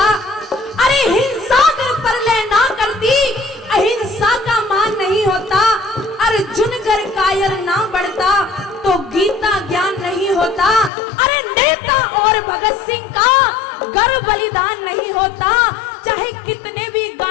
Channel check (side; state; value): right; drops out; at 10.9 s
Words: अरे हिंसा कर परलय ना करती अहिंसा का मान नहीं होता। अर्जुन कर कायर ना बढ़ता तो गीता ज्ञान नहीं होता। अरे नेता और भगत सिंह का गर्व बलिदान नहीं होता। चाहे कितने भी